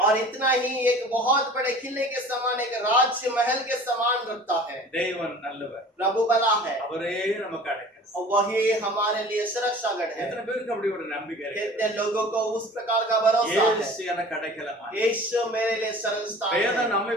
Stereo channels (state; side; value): normal; both; correlation 0.44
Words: और इतना ही एक बहुत बड़े किले के समान एक राज्य महल के समान रखता है। தேவன் நல்லவர், प्रभु भला है அவரே நமக்கு அடைக்கலம். और वही हमारे लिए सुरक्षागढ़ है। எத்தனை பேருக்கு அப்படி ஒரு நம்பிக்கை இருக்கு? कितने लोगों को उस प्रकार का भरोसा है, இயேசு எனக்கு அடைக்கலமா. यीशु मेरे लिए शरण स्थान வேதம் है।